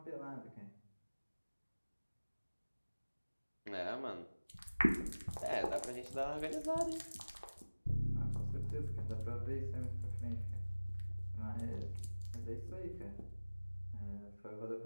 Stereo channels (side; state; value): both; inverted; correlation -1.00